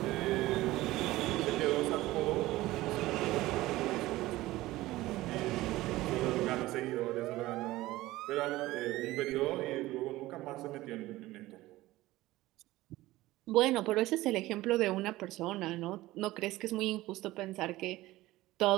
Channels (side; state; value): left; quieter; 17.6 dB